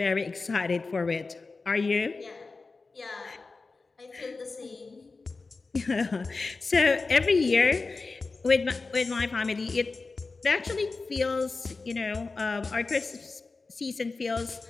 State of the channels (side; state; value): right; quieter; 3.9 dB